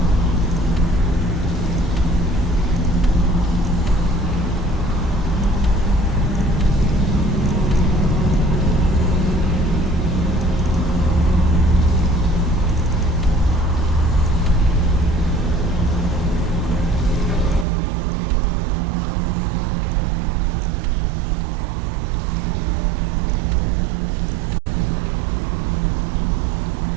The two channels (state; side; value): drops out; left; at 17.7 s